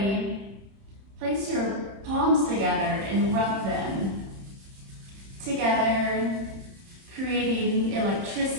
place your palms together and rub them together, creating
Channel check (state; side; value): late; left; 31 ms